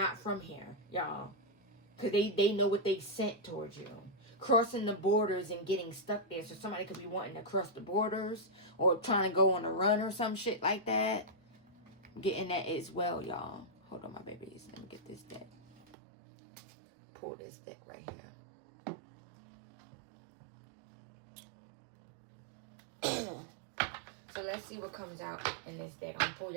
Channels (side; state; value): left; drops out; at 15.9 s